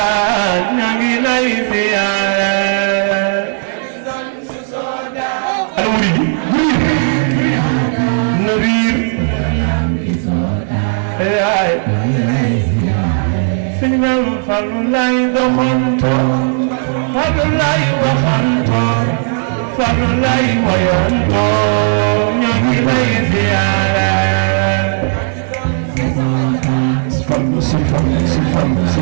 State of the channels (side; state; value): left; silent; 63 dB below the other